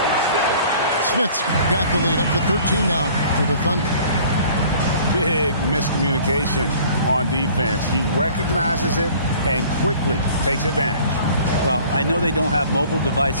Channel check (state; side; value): inverted; both; correlation -0.51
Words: Smith's got the lead up to 13 now for the Thunder. Big miscommunication on defense. He recognizes it and quickly takes advantage. Well, I know they don't have mobile